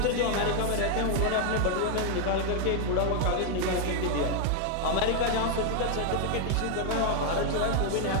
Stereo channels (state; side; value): different; both; correlation 0.00